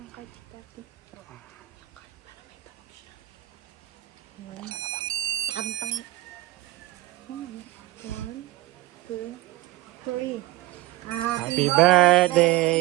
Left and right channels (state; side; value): quieter; left; 17.3 dB